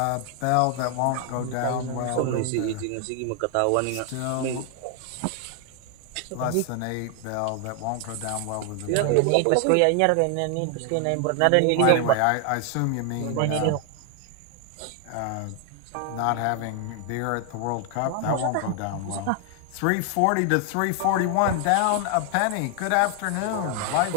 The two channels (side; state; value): both; different; correlation 0.00